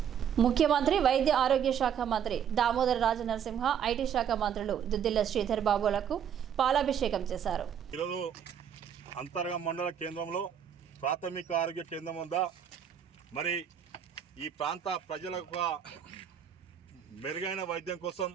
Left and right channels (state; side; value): quieter; left; 8.6 dB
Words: ముఖ్యమంత్రి వైద్య ఆరోగ్య శాఖ మంత్రి దామోదర రాజనరసింహ, ఐటీ శాఖ మంత్రులు దుద్దిల్ల శ్రీధర్ బాబులకు పాలాభిషేకం చేశారు. ఈరోజు అంతర్గం మండల కేంద్రంలో ప్రాథమిక ఆరోగ్య కేంద్రం వద్ద మరి ఈ ప్రాంత ప్రజలకు మెరుగైన వైద్యం కోసం